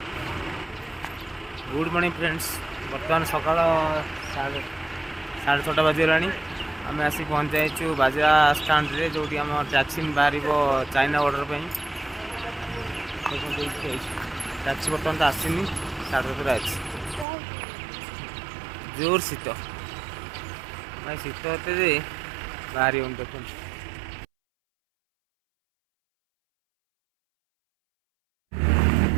good morning friends. बर्तमान सकाल 6:30 बजगला आम आसी पहुँच जाइए बाजा स्टाण्ड रे जो आम टैक्सी बाहर चाइना बॉर्डर पर टैक्सी बर्तमान तो आसनी 7:30 अच्छी जोर शीत भाई शीत होते बाहरी देखो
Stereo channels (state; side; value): drops out; left; at 17.2 s